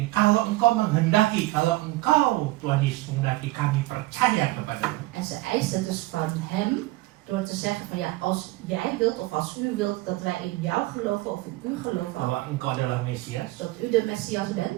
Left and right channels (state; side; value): quieter; left; 19.1 dB